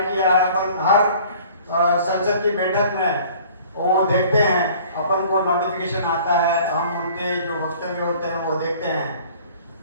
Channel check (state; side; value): inverted; both; correlation -0.51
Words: किया है, अपन हर संसद की बैठक में वो देखते हैं, अपन को नोटिफिकेशन आता है, हम उनके जो वक्तव्य होते हैं वो देखते हैं।